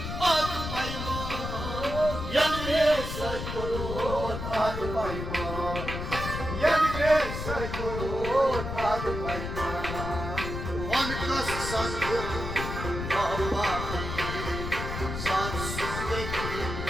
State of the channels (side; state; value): left; noise; rumble, 5 dB below the sound